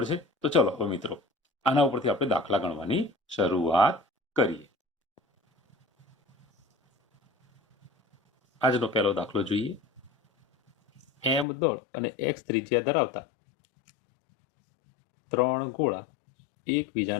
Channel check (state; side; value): drops out; right; at 11.5 s